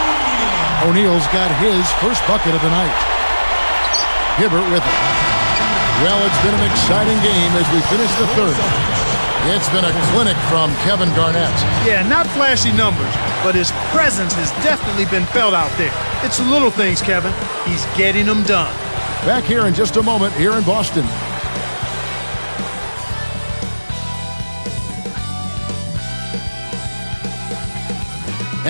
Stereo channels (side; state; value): both; inverted; correlation -1.00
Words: O'Neal's got his first bucket of the night. Hibbert with it. Well, it's been an exciting game as we finish the third. It's been a clinic from Kevin Garnett. Yeah, not flashy numbers, but his presence has definitely been felt out there. It's the little things, Kevin. He's getting them done. Back here in just a moment here in Boston.